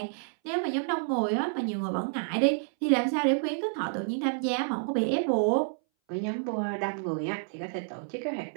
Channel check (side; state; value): left; silent; 58 dB below the other